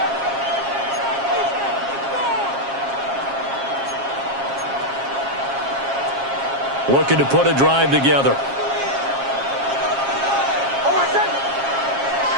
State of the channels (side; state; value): left; late; 7.4 ms